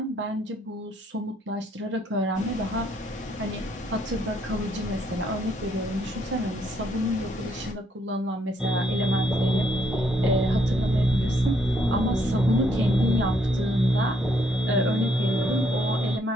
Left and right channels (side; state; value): both; normal; correlation 0.70